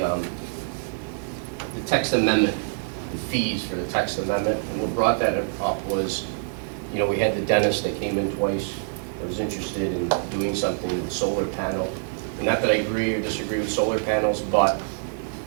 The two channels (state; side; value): silent; left; digital silence